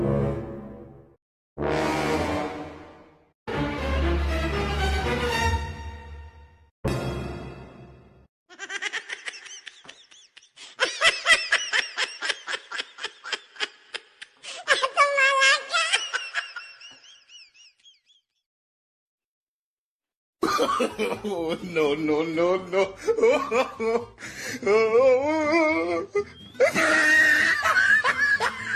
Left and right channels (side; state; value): both; identical; correlation 1.00